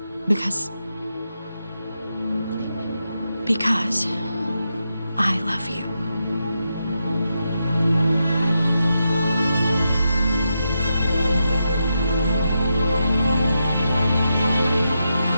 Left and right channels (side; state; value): both; inverted; correlation -0.86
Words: Because I love you.